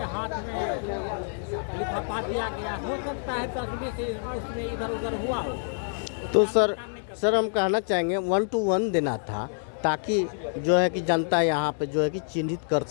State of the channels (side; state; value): right; silent; digital silence